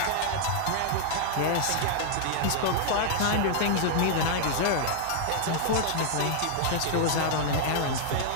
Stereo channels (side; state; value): both; different; correlation -0.01